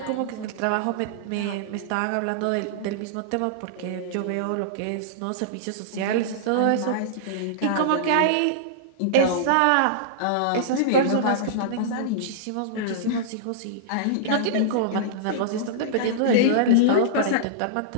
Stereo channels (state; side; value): different; both; correlation -0.02